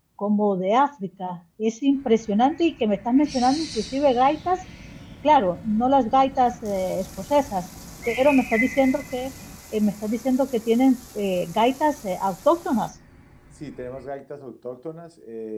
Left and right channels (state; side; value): identical; both; correlation 1.00